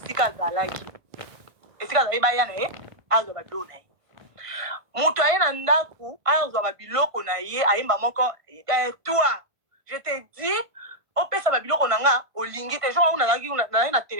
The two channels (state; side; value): late; left; 1.5 ms